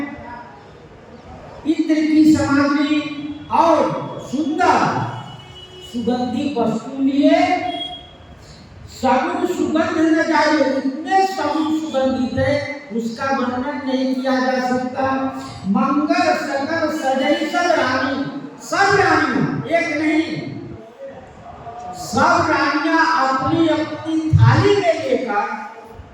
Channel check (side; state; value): both; identical; correlation 1.00